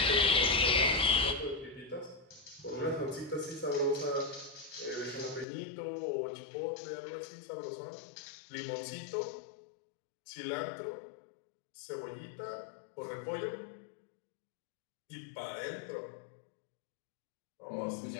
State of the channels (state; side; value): drops out; right; at 5.5 s